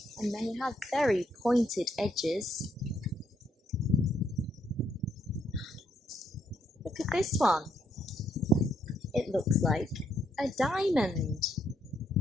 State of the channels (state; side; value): normal; both; correlation 0.73